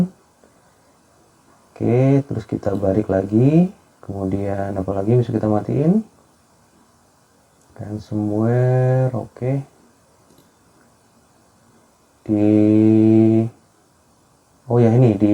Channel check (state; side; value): identical; both; correlation 1.00